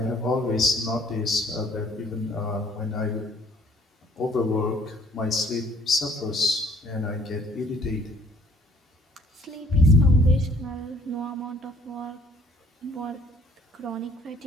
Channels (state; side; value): normal; both; correlation 0.59